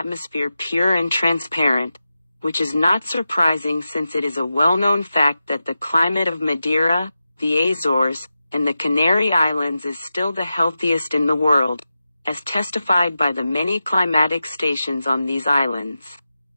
pure and transparent, which is not surprising since it is a well-known fact that the climate of Madeira, the Azores, and the Canary Islands is still the healthiest in the world, as testified by the many climatic stations on these islands.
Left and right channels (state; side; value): inverted; both; correlation -0.92